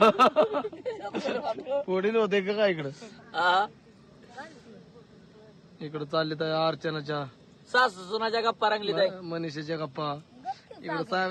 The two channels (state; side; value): identical; both; correlation 1.00